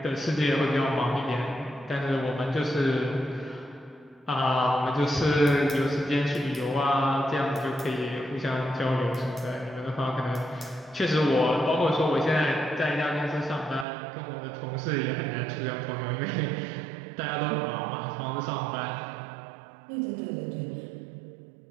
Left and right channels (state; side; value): drops out; left; at 13.9 s